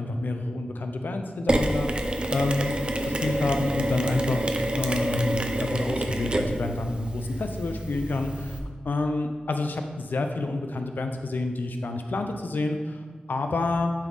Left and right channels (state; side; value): normal; both; correlation 0.89